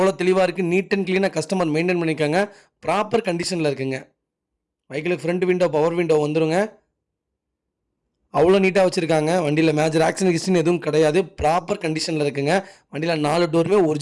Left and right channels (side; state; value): both; identical; correlation 1.00